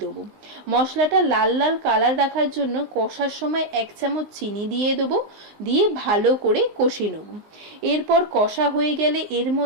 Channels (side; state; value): left; late; 19 ms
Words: দেবো। মশলাটা লাল লাল কালার রাখার জন্য কষার সময় 1 চামচ চিনি দিয়ে দেবো, দিয়ে ভালো করে কষিয়ে নেব। এরপর কষা হয়ে গেলে এর